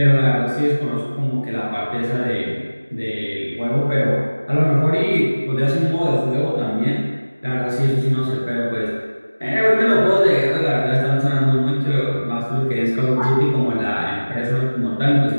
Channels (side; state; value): both; inverted; correlation -1.00